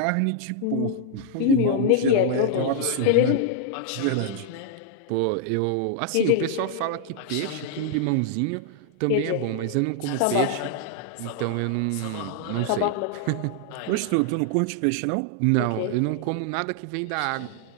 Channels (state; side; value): different; both; correlation 0.00